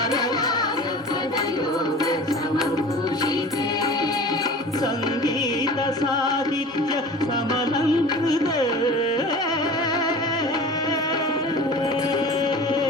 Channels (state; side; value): normal; both; correlation 0.39